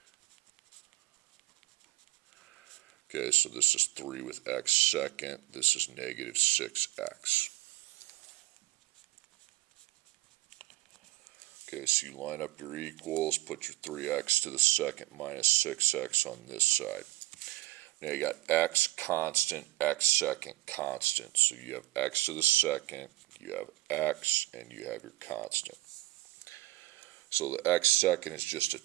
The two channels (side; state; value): left; quieter; 18.8 dB